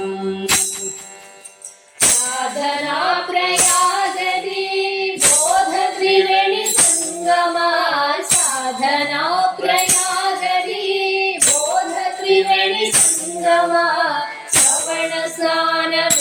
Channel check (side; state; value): both; identical; correlation 1.00